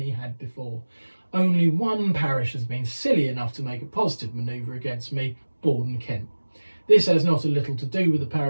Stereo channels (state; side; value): inverted; both; correlation -1.00